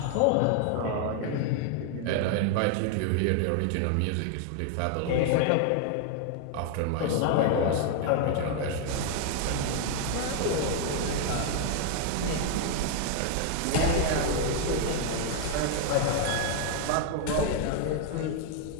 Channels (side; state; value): both; different; correlation 0.00